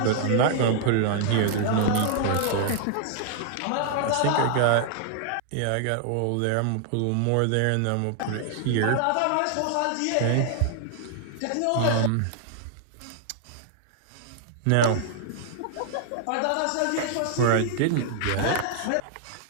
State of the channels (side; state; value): both; different; correlation 0.00